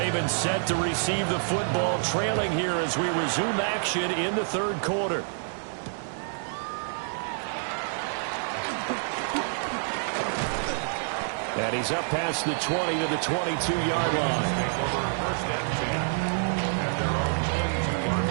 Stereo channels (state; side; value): silent; left; digital silence